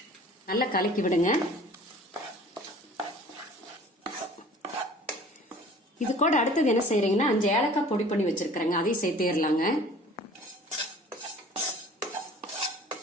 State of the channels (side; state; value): both; normal; correlation 0.48